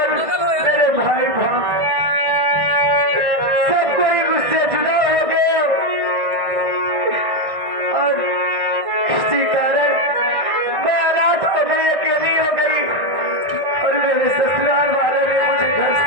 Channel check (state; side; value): late; left; 1.6 ms